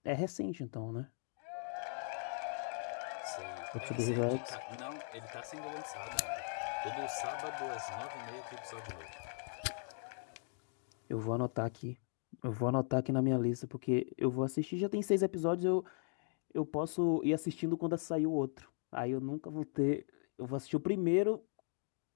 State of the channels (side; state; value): right; silent; 52 dB below the other